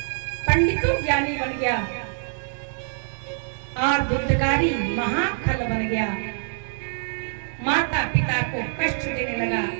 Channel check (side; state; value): left; silent; digital silence